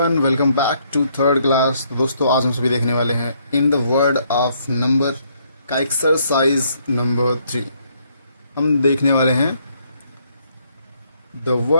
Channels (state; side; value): inverted; both; correlation -0.70